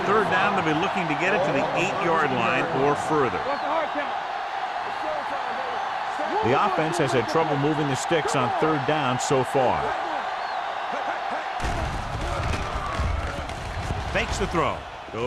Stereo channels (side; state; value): both; identical; correlation 1.00